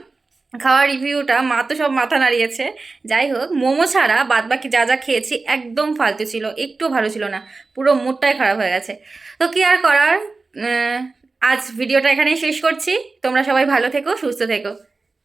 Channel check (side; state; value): left; quieter; 3.8 dB